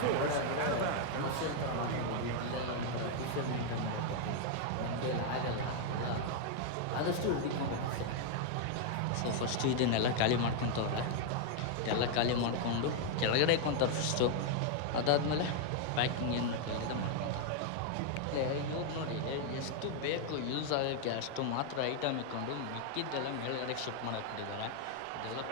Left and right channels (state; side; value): different; both; correlation 0.00